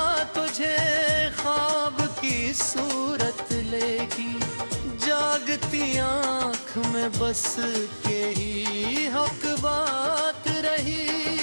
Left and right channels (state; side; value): inverted; both; correlation -1.00